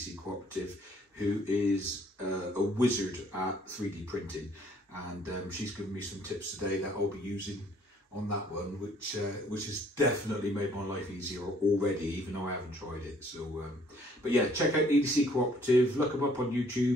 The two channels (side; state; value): both; normal; correlation 0.61